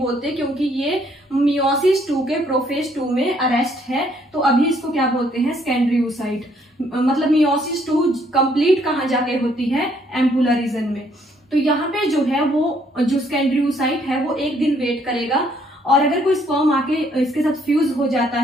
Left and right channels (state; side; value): normal; both; correlation 0.67